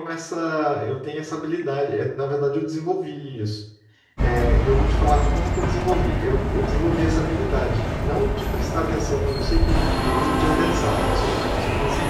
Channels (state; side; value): identical; both; correlation 1.00